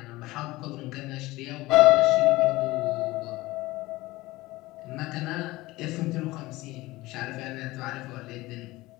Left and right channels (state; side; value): quieter; right; 19.4 dB